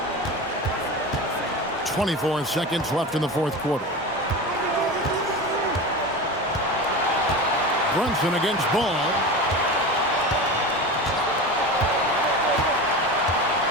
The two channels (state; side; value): normal; both; correlation 0.28